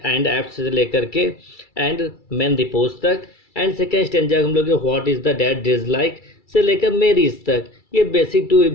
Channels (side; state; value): right; late; 2.3 ms